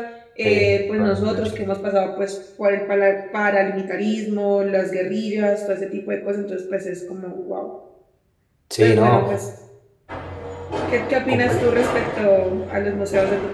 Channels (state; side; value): identical; both; correlation 1.00